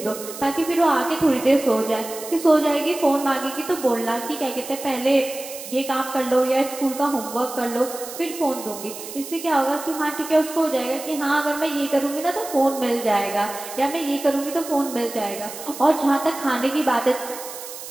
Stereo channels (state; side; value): noise; right; hiss, 12 dB below the sound